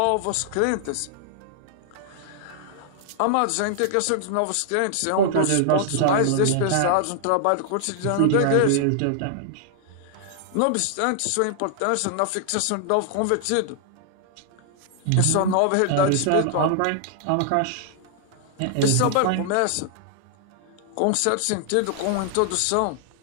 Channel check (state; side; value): different; both; correlation -0.01